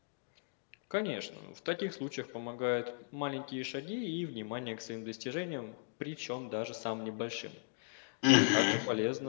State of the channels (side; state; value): right; silent; digital silence